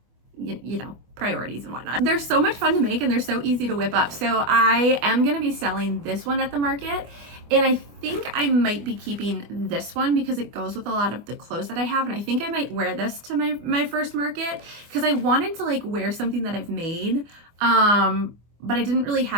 you know, priorities and whatnot. They're so much fun to make and they're so easy to whip up. So I am going to be selling this one at the market. And I think I might be keeping this one because it goes with a lot of the clothes that I have. And I think I might wear this to my first market because I wanted to like wear something that I've made. But I didn't really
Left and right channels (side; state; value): left; late; 24 ms